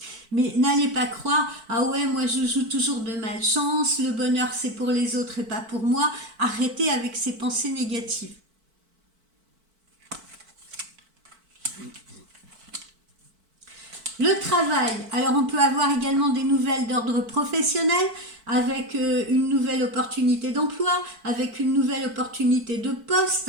Mais n'allez pas croire, ah ouais, moi je joue toujours de malchance, le bonheur c'est pour les autres et pas pour moi. Arrêtez avec ces pensées négatives. Le travail, alors on peut avoir également des nouvelles d'ordre professionnel, avec une nouvelle opportunité d'emploi, avec une nouvelle opportunité de poste,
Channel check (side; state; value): left; late; 4.5 ms